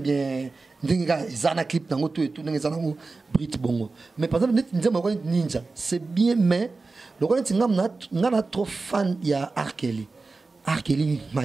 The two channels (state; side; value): quieter; left; 3.8 dB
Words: bien Zana clip dans tout et tout dans Brit Bongo. Mais par exemple, Ninja, c'est bien, mais le roi n'a trop fan il y a Arkeli,